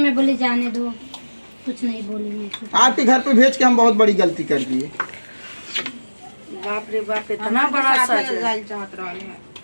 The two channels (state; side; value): inverted; both; correlation -1.00